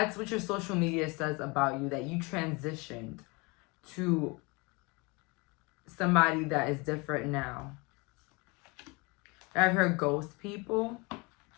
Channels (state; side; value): quieter; right; 27.7 dB